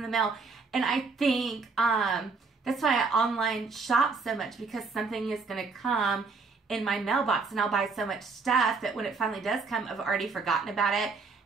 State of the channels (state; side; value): quieter; left; 4.4 dB